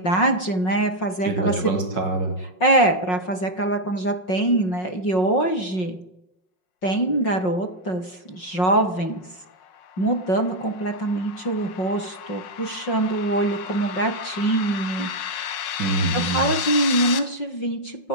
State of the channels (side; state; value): right; late; 5.5 ms